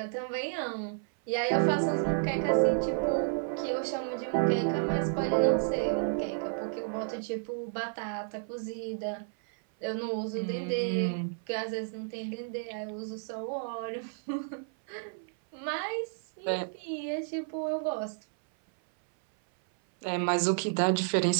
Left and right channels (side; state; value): left; silent; 57 dB below the other